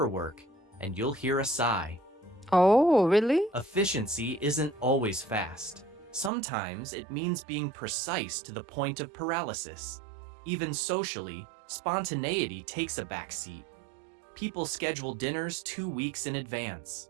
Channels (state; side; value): drops out; left; at 6.3 s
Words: and you'll hear a sigh. Oh, really? Efficiency isn't always fast. Sometimes it means being precise to the point of paralysis. Even socially, spontaneity takes a backseat. People schedule dinners 2 weeks in